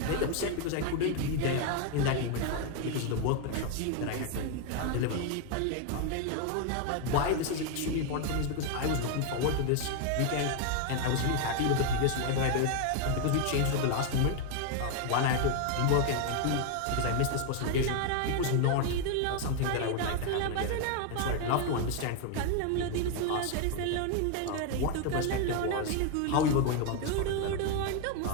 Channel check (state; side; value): different; both; correlation 0.01